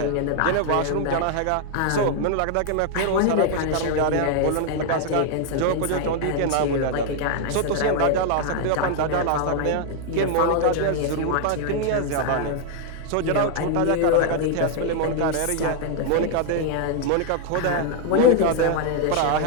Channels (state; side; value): different; both; correlation 0.00